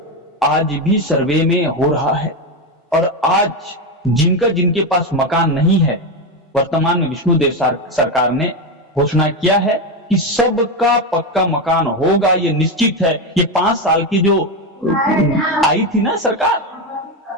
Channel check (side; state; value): both; normal; correlation 0.12